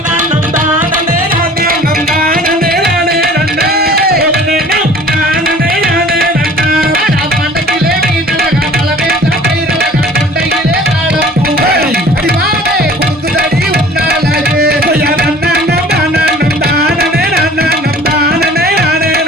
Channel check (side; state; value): both; normal; correlation 0.47